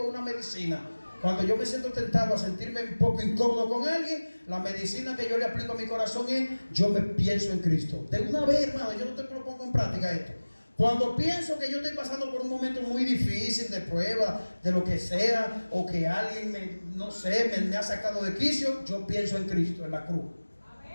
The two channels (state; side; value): inverted; both; correlation -1.00